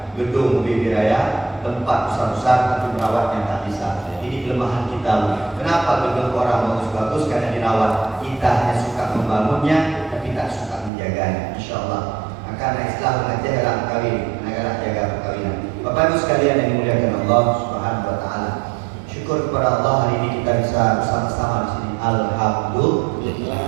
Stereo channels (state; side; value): drops out; left; at 10.9 s